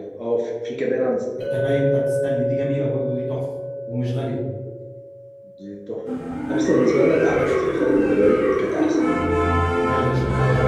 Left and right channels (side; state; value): both; identical; correlation 1.00